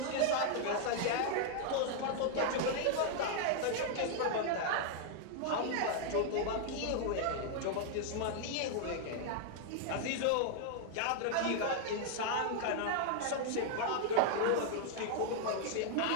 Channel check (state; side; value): different; both; correlation 0.00